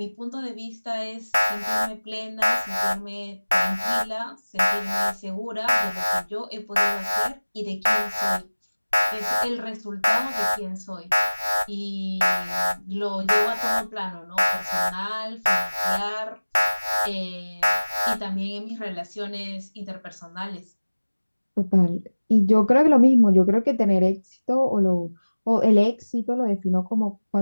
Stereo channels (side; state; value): both; inverted; correlation -1.00